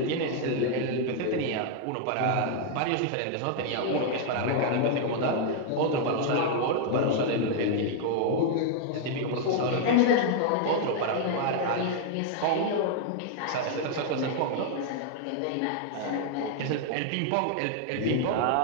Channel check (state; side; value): different; both; correlation 0.00